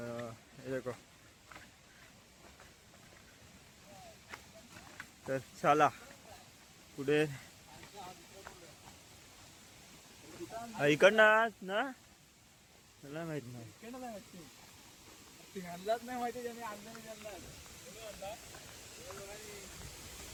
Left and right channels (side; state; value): both; identical; correlation 1.00